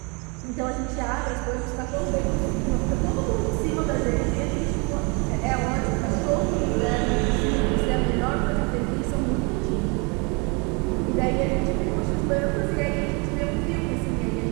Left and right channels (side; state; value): left; quieter; 31.5 dB